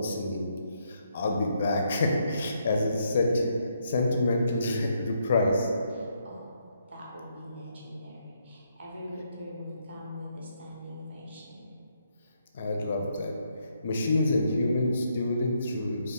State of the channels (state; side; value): inverted; both; correlation -0.76